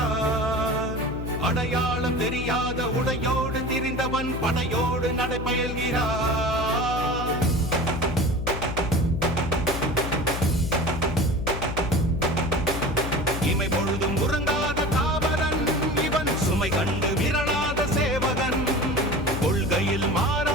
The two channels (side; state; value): left; noise; hum, 6 dB below the sound